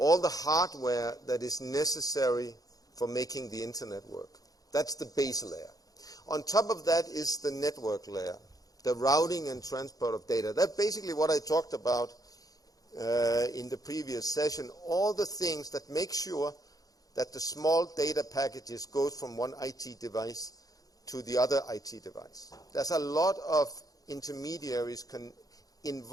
the hardware that is necessary for making the internet work. That's the base layer. On top of that is the network layer, the routing and transport of data. That's basically what I talked about in the previous session. All the things that make sure that the small data packages go from one IT device to the other IT device. There's a lot of intermediaries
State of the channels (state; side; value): late; right; 0.18 ms